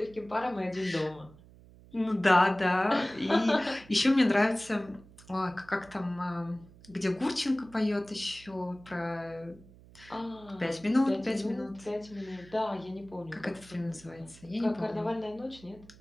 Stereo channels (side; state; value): right; noise; hum, 22 dB below the sound